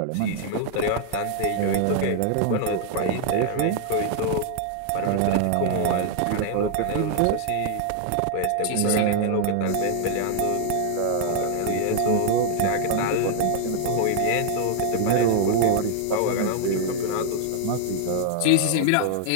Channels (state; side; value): different; both; correlation 0.00